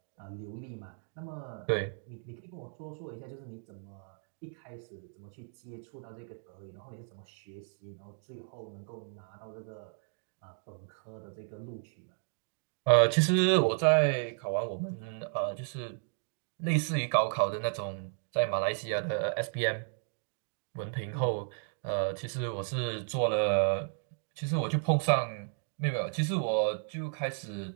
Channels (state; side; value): silent; left; 55 dB below the other